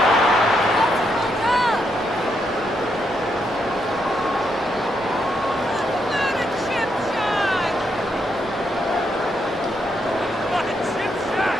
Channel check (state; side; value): normal; both; correlation 0.79